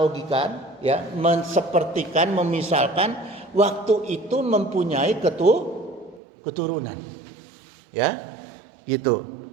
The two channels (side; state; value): left; drops out; at 6.2 s